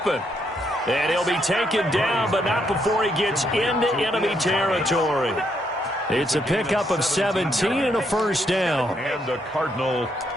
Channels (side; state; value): both; normal; correlation 0.75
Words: And he'll be taken down, but not before he gets into enemy territory. It's a pickup of 17 and a first down. And the Cardinal